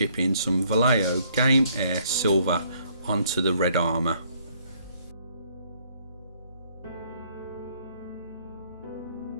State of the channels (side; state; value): both; inverted; correlation -0.65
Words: some Vallejo Game Air Silver onto the red armour.